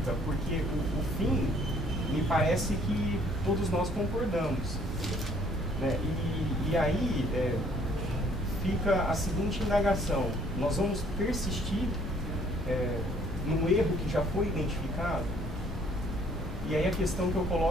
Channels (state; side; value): normal; both; correlation 0.61